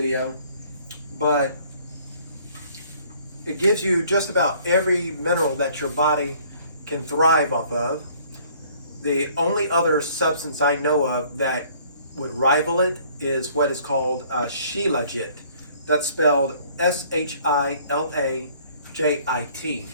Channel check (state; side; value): inverted; both; correlation -0.58